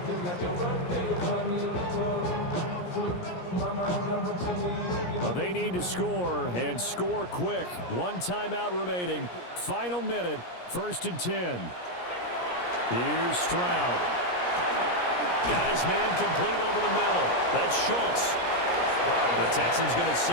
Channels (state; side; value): late; right; 17 ms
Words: Well, they need to score and score quick. 1 timeout remaining. Final minute. First and 10. Here's Stroud. Got his man complete over the middle. That's Schultz. The Texans going to